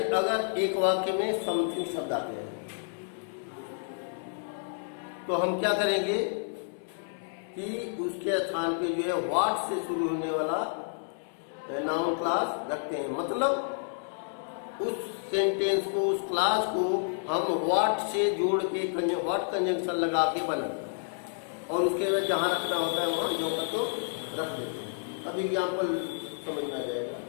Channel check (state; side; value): silent; right; digital silence